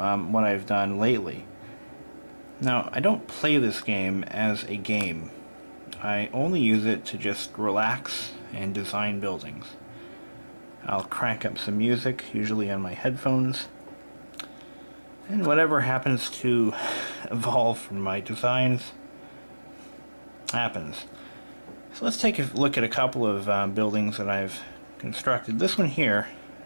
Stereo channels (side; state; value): both; inverted; correlation -1.00